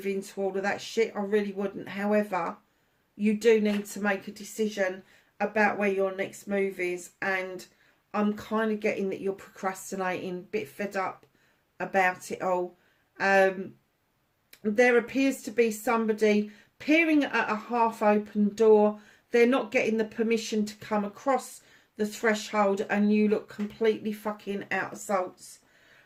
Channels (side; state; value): both; identical; correlation 1.00